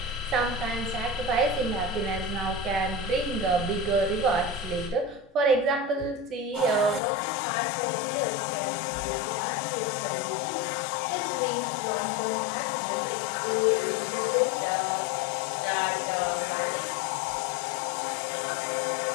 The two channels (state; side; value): drops out; right; at 7.0 s